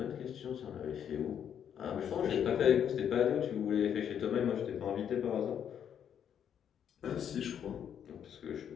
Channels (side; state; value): right; quieter; 8.8 dB